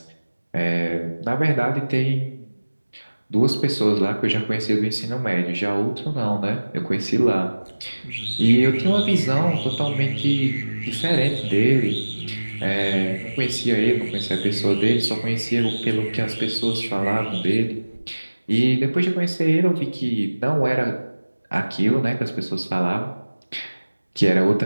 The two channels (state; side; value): inverted; both; correlation -1.00